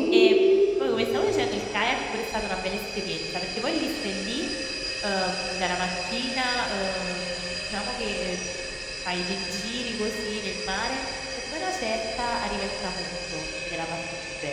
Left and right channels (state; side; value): identical; both; correlation 1.00